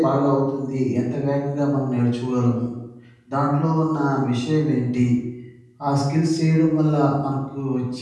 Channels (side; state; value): both; identical; correlation 1.00